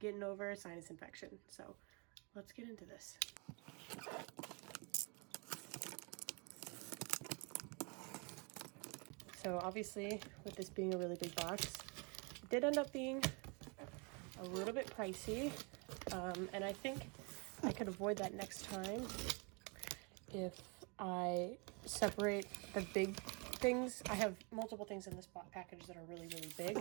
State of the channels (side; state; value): left; quieter; 32.5 dB